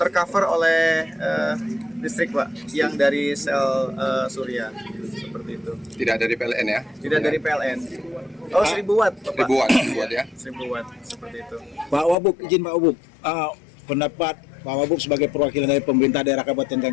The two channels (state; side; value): drops out; right; at 12.2 s